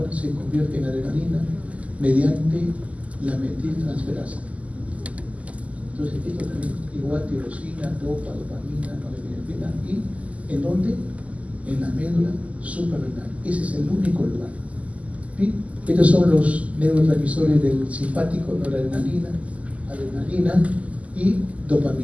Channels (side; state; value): left; late; 0.069 ms